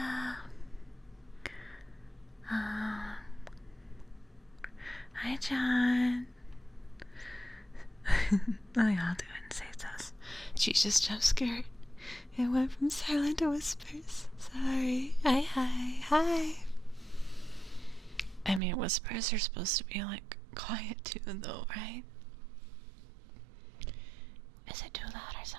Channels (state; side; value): drops out; left; at 18.6 s